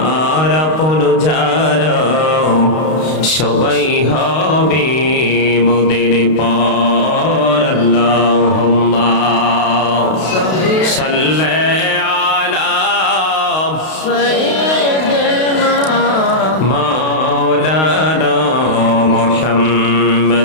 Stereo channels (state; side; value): late; right; 32 ms